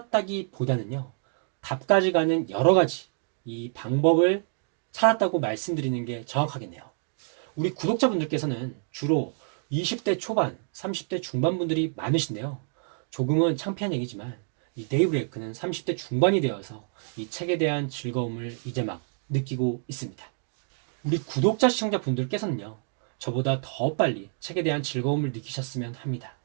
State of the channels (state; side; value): silent; left; 60 dB below the other